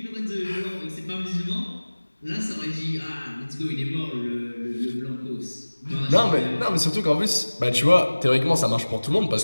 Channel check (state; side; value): inverted; both; correlation -1.00